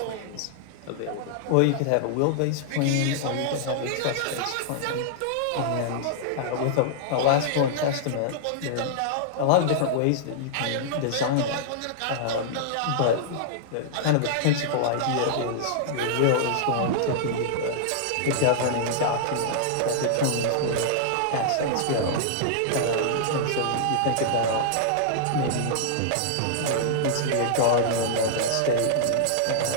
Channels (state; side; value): different; both; correlation -0.01